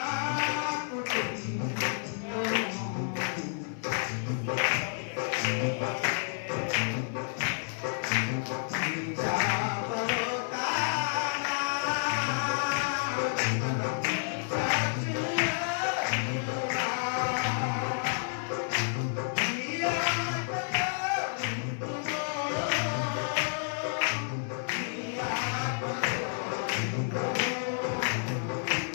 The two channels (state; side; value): silent; right; digital silence